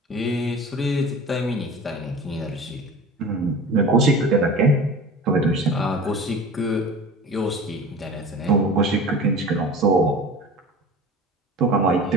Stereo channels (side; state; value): both; normal; correlation 0.37